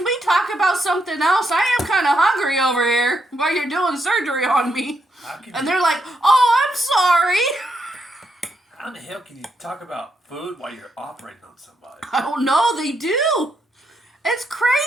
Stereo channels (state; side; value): normal; both; correlation 0.79